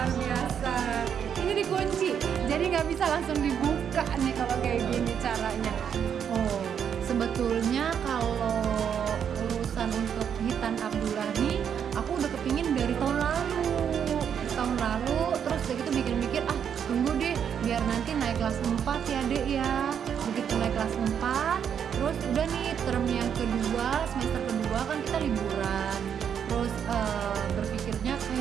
biasa. Ini dikunci, jadi nggak bisa langsung dibuka nih kalau kayak gini caranya. Oh, sebetulnya kalau urusan untuk hitan Abdullah nih, aku udah kepingin dari tahun lalu. Terus udah gitu mikir-mikir, tunggu deh biar nanti naik kelas 4 ya dek ya. Begitu naik kelas 4, terus udah nih term yang kedua, semester kedua kan kita liburan. Terus berpikirnya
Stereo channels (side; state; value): left; quieter; 8.1 dB